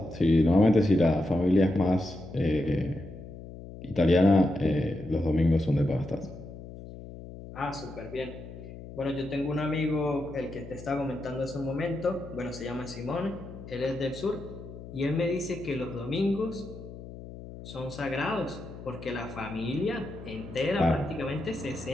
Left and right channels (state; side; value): noise; left; hum, 13 dB below the sound